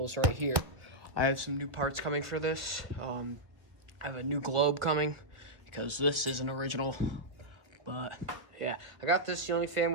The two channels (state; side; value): late; left; 1.0 ms